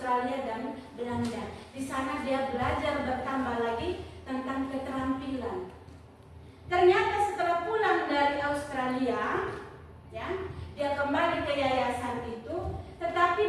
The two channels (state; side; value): identical; both; correlation 1.00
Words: dan Belanda. Di sana dia belajar bertambah lagi tentang keterampilan. Ternyata setelah pulang dari Australia, ya, dia kembali ke yayasan itu,